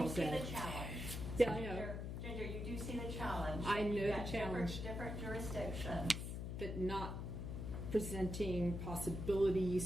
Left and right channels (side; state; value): left; noise; hum, 4 dB below the sound